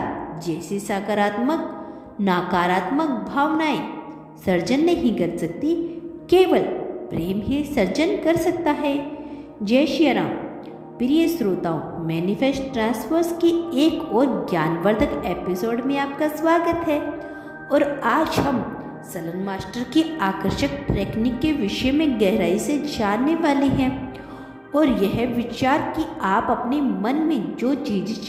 जैसी सकारात्मक नकारात्मक भावनाएं सर्जन नहीं कर सकती, केवल प्रेम ही सर्जन कर सकता है। जय श्री राम। प्रिय श्रोताओं, मैनिफेस्ट ट्रांसफर्स की एक और ज्ञानवर्धक एपिसोड में आपका स्वागत है। और आज हम सलन मास्टर की आकर्षक टेक्निक के विषय में गहराई से जानने वाले हैं। और यह विचार कि आप अपने मन में जो चीज़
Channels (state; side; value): identical; both; correlation 1.00